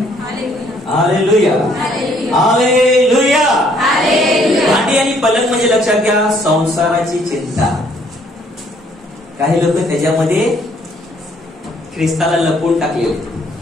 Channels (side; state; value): both; normal; correlation 0.64